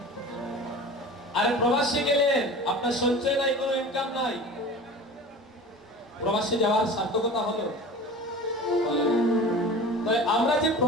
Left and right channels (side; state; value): both; normal; correlation 0.37